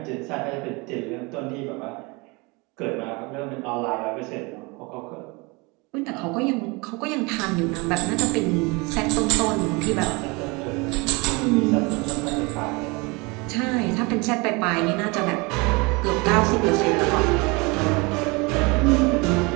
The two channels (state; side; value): quieter; left; 27.1 dB